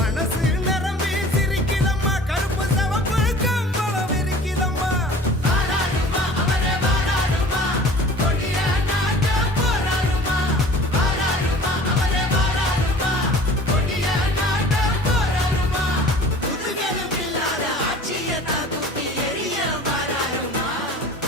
நிரம்பி சிரிக்குதம்மா, கருப்பு சவப்பு கம்பளம் இருக்குதம்மா. வாராருமா அவரே வாராருமா, கொடிய நாட்ட போராருமா. வாராருமா அவரே வாராருமா, கொடிய நாட்ட போராருமா. புதுகலும் இல்லாத ஆட்சியத்தான் தூக்கி எரிய வாராருமா.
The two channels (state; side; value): normal; both; correlation 0.45